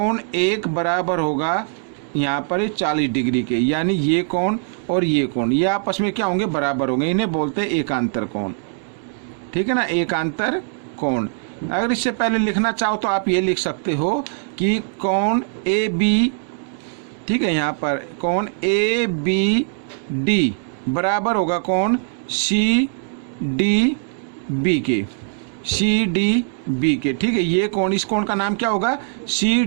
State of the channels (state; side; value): silent; left; 65 dB below the other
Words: 1 बराबर होगा यहाँ पर 40 डिग्री के, यानी ये कोण और ये कोण ये आपस में क्या होंगे, बराबर होंगे। इन्हें बोलते हैं एकांतर कोण। ठीक है ना, एकांतर कोण। अगर इससे पहले लिखना चाहो तो आप ये लिख सकते हो कि कोण AB, ठीक है, यहाँ पर कोण ABD बराबर होगा कोण CDB के, CDB के। ठीक है, ये कोण, इस कोण का नाम क्या होगा,